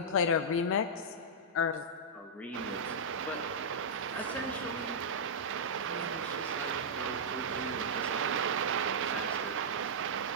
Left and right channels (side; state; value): both; normal; correlation -0.10